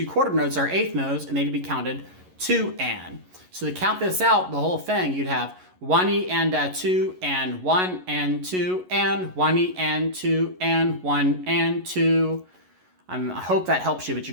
quarter notes are eighth notes, and they'd be counted 2 and. So to count this out, the whole thing, you'd have 1 E and 2 and 1 and 2 and 1 E and 2 and 1 and 2. I hope that helps you, but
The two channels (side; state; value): left; late; 11 ms